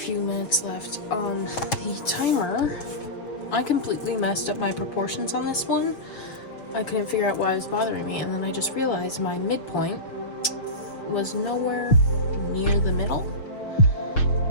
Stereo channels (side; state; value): right; late; 6.3 ms